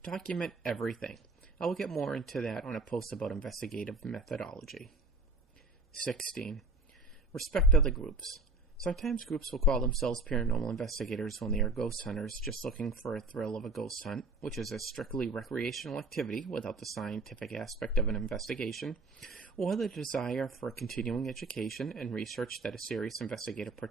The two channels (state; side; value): quieter; left; 3.1 dB